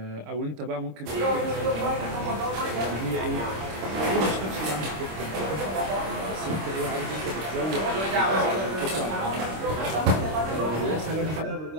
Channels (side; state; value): left; late; 26 ms